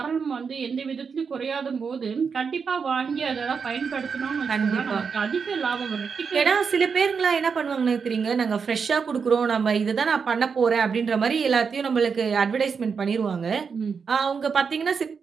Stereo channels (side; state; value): left; quieter; 5.8 dB